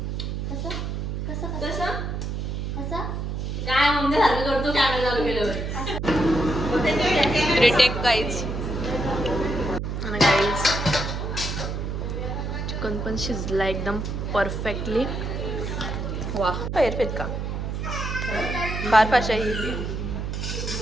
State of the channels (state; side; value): noise; right; hum, 3 dB below the sound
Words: कसं कसं कसं कसं काय मम्मी सारखं करतो कॅमेरा चालू केल्यावर. Retake guys. आणि गाईज चिकन पण शिजला एकदम परफेक्टली. वा परफेक्ट का फार भाषा ही.